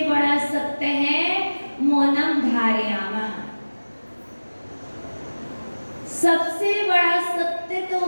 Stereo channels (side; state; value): both; inverted; correlation -1.00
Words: बड़ा सत्य है मौनम धारयामा। सबसे बड़ा सत्य